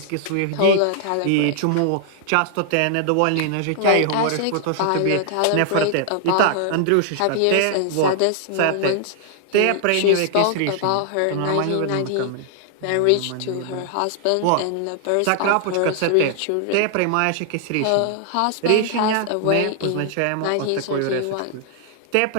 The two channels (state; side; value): different; both; correlation -0.01